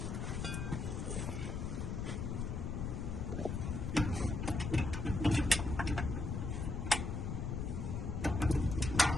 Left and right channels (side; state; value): left; noise; rumble, 2 dB below the sound